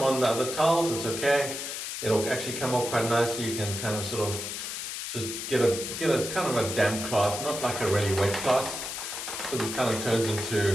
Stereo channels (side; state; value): left; noise; hiss, 5 dB below the sound